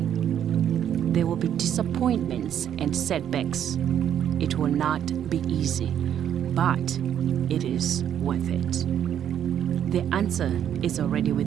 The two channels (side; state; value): left; quieter; 9.7 dB